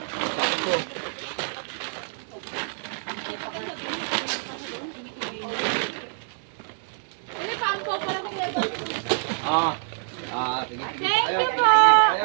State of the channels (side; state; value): left; silent; digital silence